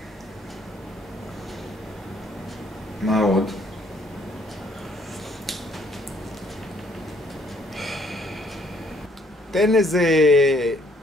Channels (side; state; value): both; normal; correlation 0.65